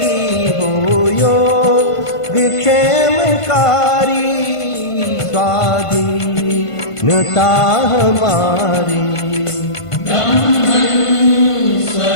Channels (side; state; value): right; late; 1.5 ms